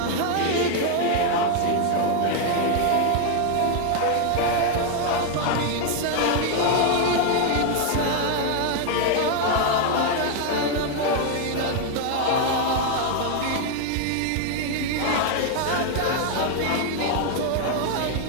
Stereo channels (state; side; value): different; both; correlation 0.00